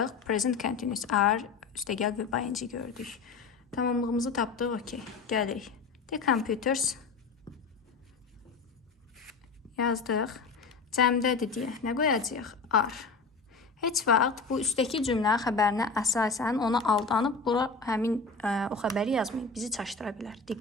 Present continuous are üstə gəl və ing gördük. Tamamlığımızı tapdıq. Okay. Gəlirik. The computers yazdıq. Cəmdədir deyə nə qoyacağıq? Are. Heç vaxt bu üstəki cümlə xəbərinə əsasən ona aldanıb bura həmin o xəbəri yazmayın. Bizi çaşdıra bilər.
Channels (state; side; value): quieter; right; 4.6 dB